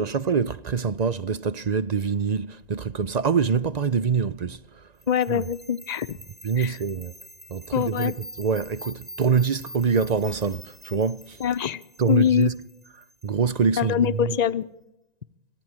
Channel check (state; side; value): late; left; 1.9 ms